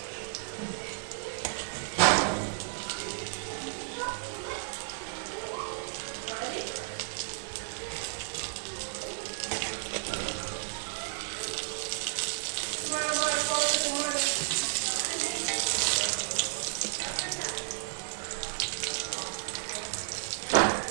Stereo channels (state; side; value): silent; left; digital silence